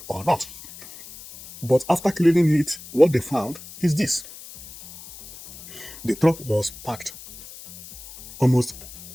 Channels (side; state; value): left; noise; hiss, 16 dB below the sound